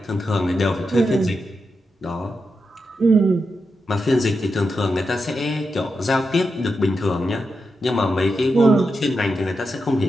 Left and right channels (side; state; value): both; normal; correlation 0.87